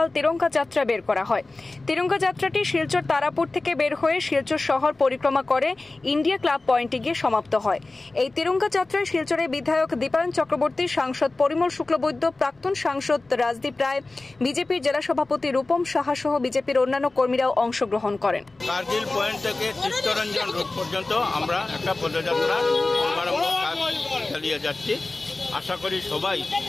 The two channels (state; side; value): quieter; right; 3.2 dB